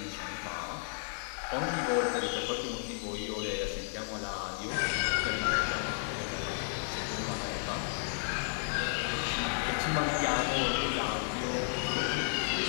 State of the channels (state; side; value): silent; right; digital silence